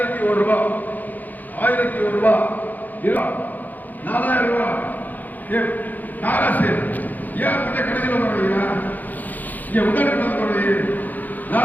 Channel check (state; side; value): late; right; 0.083 ms